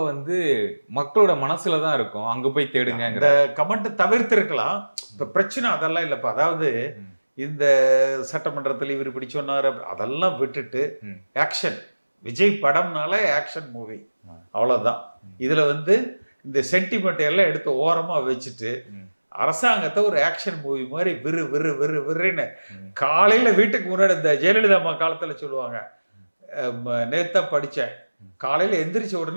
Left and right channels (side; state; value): both; inverted; correlation -1.00